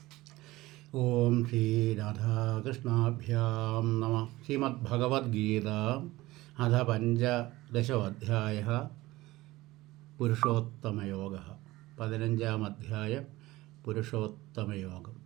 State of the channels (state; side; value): quieter; left; 18.6 dB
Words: ഓം ശ്രീരാധാകൃഷ്ണാഭ്യാം നമഃ. ശ്രീമദ്ഭഗവത്ഗീത അഥ പഞ്ചദശോऽധ്യായः പുരുഷോത്തമയോഗः. 15-ാം അധ്യായം പുരുഷോത്തമയോഗം.